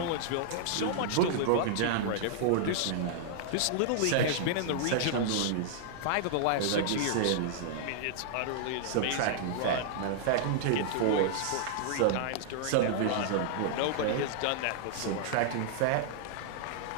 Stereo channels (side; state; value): both; different; correlation -0.01